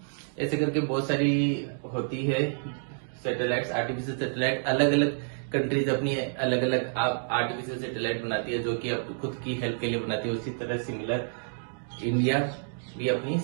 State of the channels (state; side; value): silent; left; digital silence